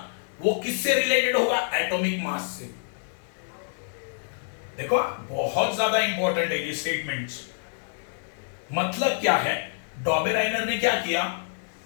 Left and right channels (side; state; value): right; silent; digital silence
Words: वो किससे रिलेटेड होगा, एटॉमिक मास से। देखो बहुत ज्यादा इंपॉर्टेंट है ये स्टेटमेंट्स। मतलब क्या है, डॉबेराइनर ने क्या किया,